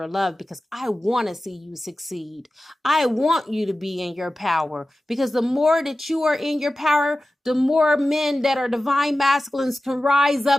of love because I want to see you succeed. I want you to be in your power, because the more that you are in your power, the more men that are divine masculines can rise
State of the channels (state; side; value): normal; both; correlation 0.95